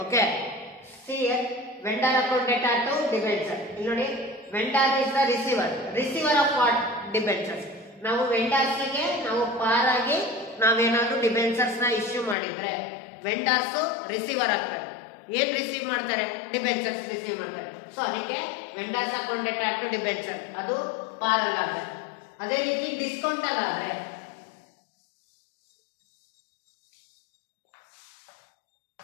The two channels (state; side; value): drops out; right; at 12.4 s